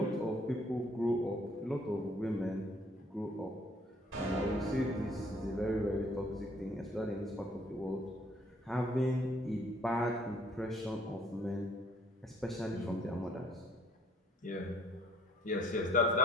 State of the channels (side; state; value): both; normal; correlation 0.62